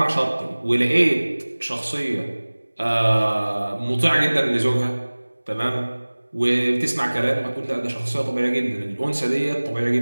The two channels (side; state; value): both; inverted; correlation -1.00